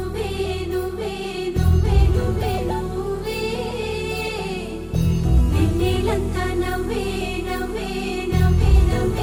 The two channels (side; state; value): both; identical; correlation 1.00